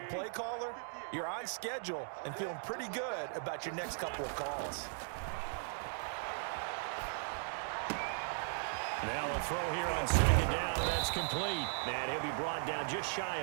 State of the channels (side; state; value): left; silent; digital silence